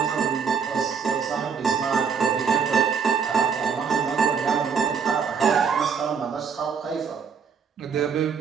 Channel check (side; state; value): left; quieter; 6.2 dB